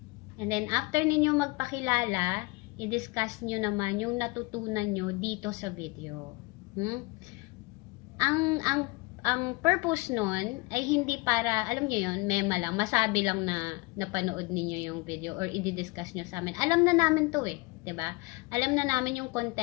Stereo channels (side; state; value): right; quieter; 24.8 dB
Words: And then, after ninyo magpakilala, i-discuss nyo naman yung natutunan nyo dito sa video. Ang purpose nun ay hindi para, alam nyo yun, mema lang, masabi lang na napanood ninyo yung video or i-discuss nyo sa amin. Alam na namin to eh, 'di ba? Alam na namin yung